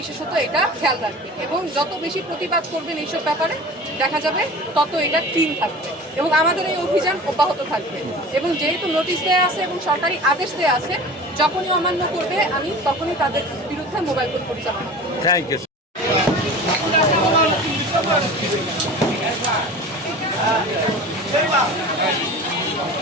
এটা খেয়াল রাখবে। এবং যত বেশি প্রতিবাদ করবেন এইসব ব্যাপারে দেখা যাবে তত এটা ক্লিন থাকবে। এবং আমাদের এই অভিযান অব্যাহত থাকবে। এবং যেহেতু নোটিশ দেওয়া আছে এবং সরকারি আদেশ দেওয়া আছে, যখনই অমান্য করবে আমি তখনই তাদের বিরুদ্ধে মোবাইল কোর্ট পরিচালনা করব। Thank you.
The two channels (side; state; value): both; normal; correlation 0.37